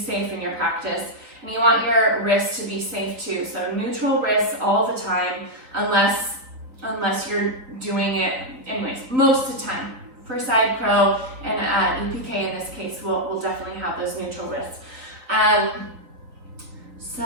in your practice, and you want your wrists to be safe too. So neutral wrists all the time, unless you're doing it anyways, most of the time. For side crow and EPK in this case, we'll definitely have those neutral wrists. So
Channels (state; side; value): late; left; 4.1 ms